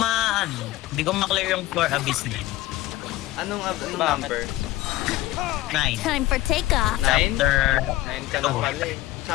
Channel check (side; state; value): right; quieter; 16.8 dB